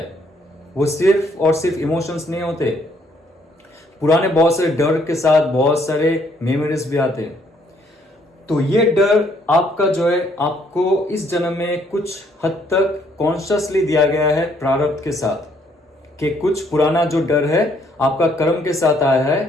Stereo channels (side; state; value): both; normal; correlation 0.67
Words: वो सिर्फ और सिर्फ इमोशंस नहीं होते, पुराने बहुत सारे डर के साथ बहुत सारे मेमोरीज भी आते हैं। तो ये डर आपका जो है आपको इस जन्म में कुछ हद तक कॉन्शियसली दिया गया है प्रारब्ध के साथ, कि कुछ पुराना जो डर है आपका कर्म के साथ आया